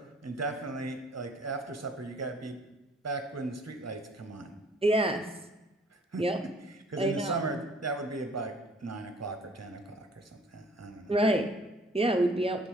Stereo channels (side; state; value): both; normal; correlation 0.56